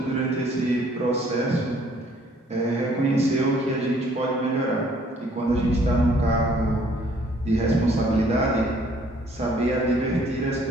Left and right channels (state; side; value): normal; both; correlation 0.61